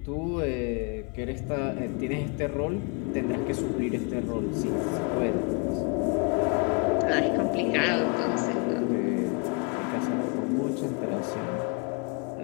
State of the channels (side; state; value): right; quieter; 34.6 dB